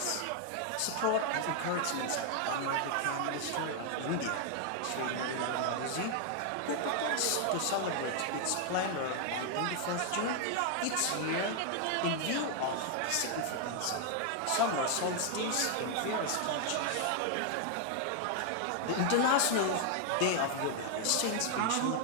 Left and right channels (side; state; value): both; different; correlation 0.00